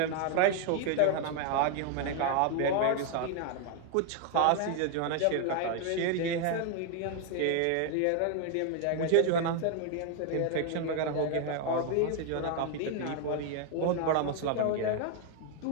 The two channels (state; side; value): different; both; correlation 0.00